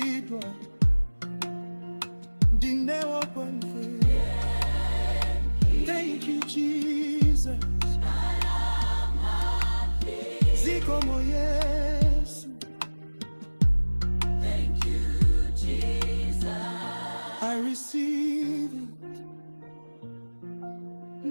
ndinewo kwamve. Thank you, Jesus. Zikomo Yesu. Thank you, Jesus. I receive it.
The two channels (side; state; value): both; inverted; correlation -1.00